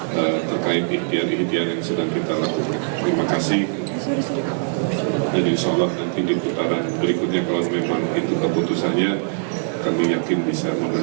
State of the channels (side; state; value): left; silent; digital silence